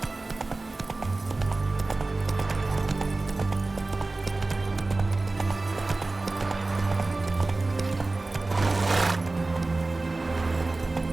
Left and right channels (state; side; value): quieter; left; 3.2 dB